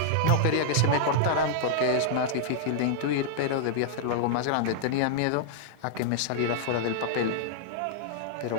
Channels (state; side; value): different; both; correlation -0.01